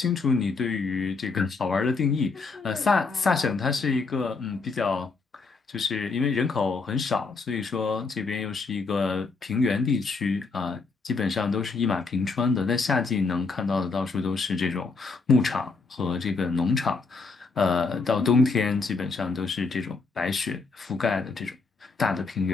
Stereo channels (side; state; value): right; quieter; 4.3 dB